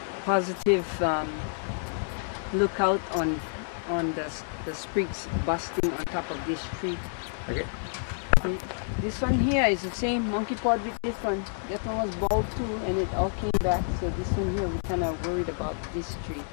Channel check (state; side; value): silent; right; digital silence